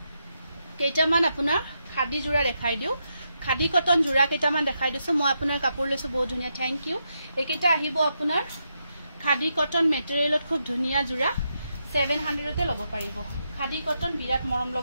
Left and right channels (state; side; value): inverted; both; correlation -0.83